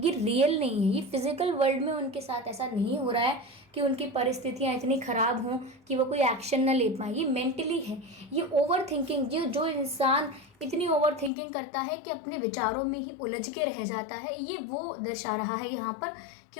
रियल नहीं है। ये फिजिकल वर्ल्ड में उनके साथ ऐसा नहीं हो रहा है कि उनकी परिस्थितियाँ इतनी ख़राब हों कि वो कोई एक्शन ना ले पाए। ये मेंटली है। ये ओवर थिंकिंग, जो इंसान इतनी ओवर थिंकिंग करता है कि अपने विचारों में ही उलझ के रह जाता है, ये वो दर्शा रहा है यहाँ पर कि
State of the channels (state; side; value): drops out; right; at 11.3 s